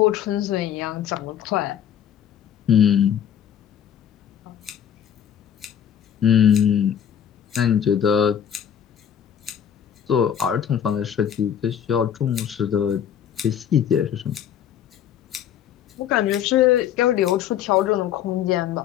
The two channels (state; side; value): quieter; right; 9.3 dB